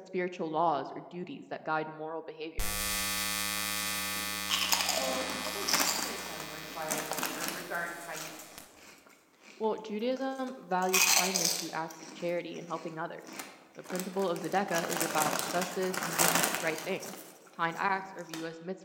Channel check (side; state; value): both; identical; correlation 1.00